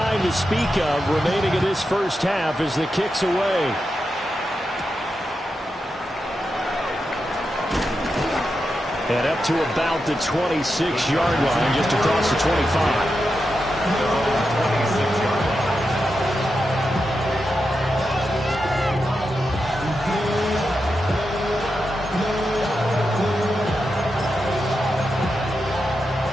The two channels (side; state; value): both; normal; correlation 0.88